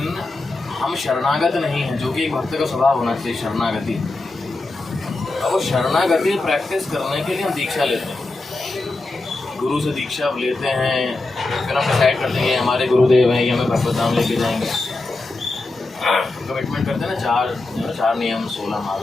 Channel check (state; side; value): quieter; right; 3.2 dB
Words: हम शरणागत नहीं हैं, जो कि एक भक्त का स्वभाव होना चाहिए, शरणागति। अब वो शरणागति प्रैक्टिस करने के लिए हम दीक्षा लेते हैं, गुरु से दीक्षा लेते हैं, फिर हम डिसाइड करते हैं हमारे गुरुदेव हैं, ये हमें भगवत धाम लेके जाएंगे। कमिटमेंट करते हैं ना, 4 नियम 16